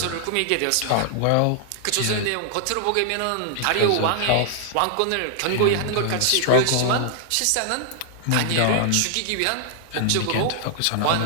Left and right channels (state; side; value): different; both; correlation -0.01